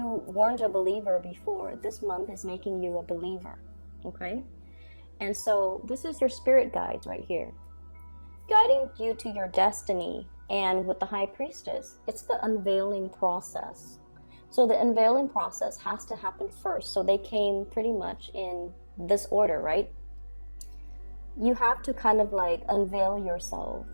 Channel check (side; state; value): both; inverted; correlation -1.00